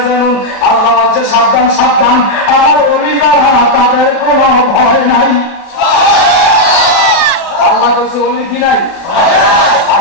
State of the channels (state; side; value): late; right; 34 ms